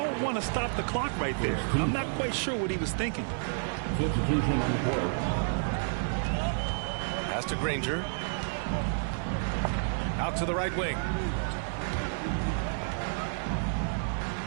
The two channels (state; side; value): silent; left; 58 dB below the other